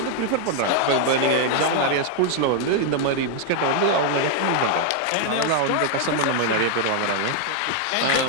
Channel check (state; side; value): different; both; correlation 0.00